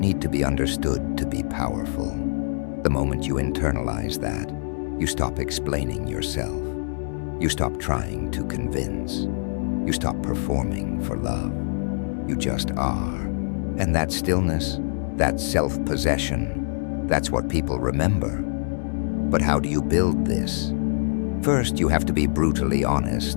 to be understood to be powerful. The moment you internalize that, you stop explaining yourself. You stop trying to convince. You stop performing for love. You just are. And that stillness, that self-possession, that's what people remember. But how do you build this? First, you have to be brutally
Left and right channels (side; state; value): right; silent; digital silence